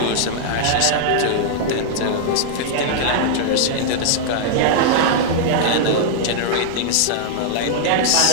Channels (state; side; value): different; both; correlation -0.01